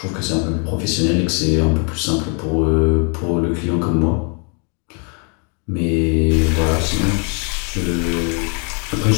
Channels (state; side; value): quieter; right; 38.0 dB